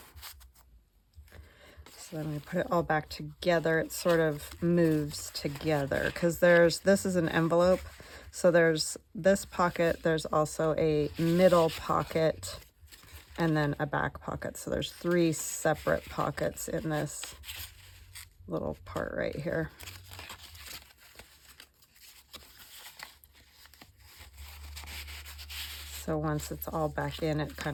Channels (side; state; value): both; identical; correlation 1.00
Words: So then we put it all back together. It sort of moves together because this is an envelope. So there's this pocket, there's also a middle pocket, and then a back pocket. So there's 3 separate pockets in this little part right here. So once it's all back in, it